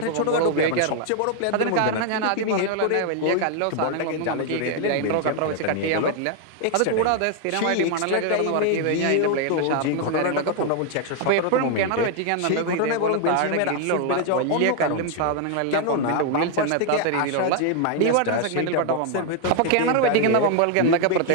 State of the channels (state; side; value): different; both; correlation 0.00